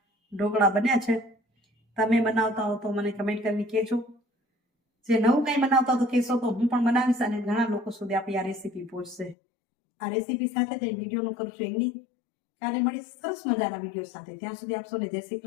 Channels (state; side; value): drops out; right; at 9.3 s